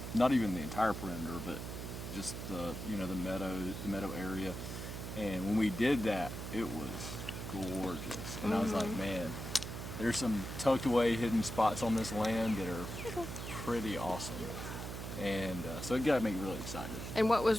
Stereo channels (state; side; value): noise; right; hum, 7 dB below the sound